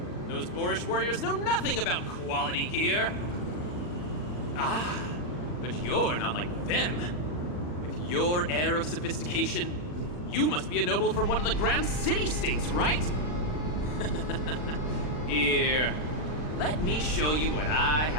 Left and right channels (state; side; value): late; right; 40 ms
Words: Those boorish warriors know nothing about quality gear. Ah, but you're not like them. With your air of sophistication, you must be a noble from one of the Grand City-states, right? Here, let me show you what I